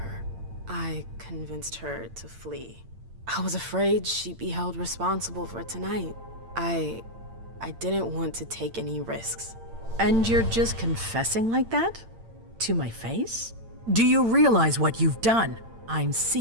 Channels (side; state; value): left; late; 8.8 ms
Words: I convinced her to flee. I was afraid she'd be held responsible for tonight. I didn't want to take any risks. And you're just confessing like that? To my face? Do you realize what you've done? I'm